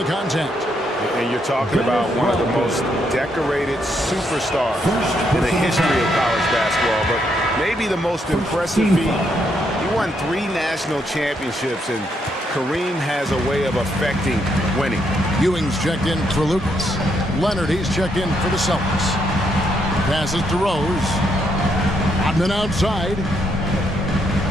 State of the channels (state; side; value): normal; both; correlation 0.76